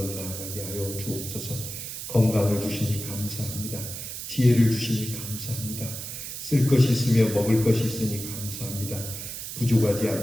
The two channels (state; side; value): noise; right; hiss, 8 dB below the sound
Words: 나아가게 하여 주옵소서. 건강을 주시니 감사합니다. 지혜를 주시니 감사합니다. 쓸 것이 있으며 먹을 것이 있으니 감사합니다. 부족하지